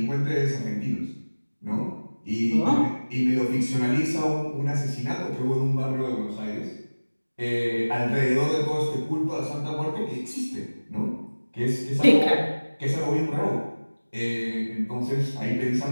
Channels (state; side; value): inverted; both; correlation -1.00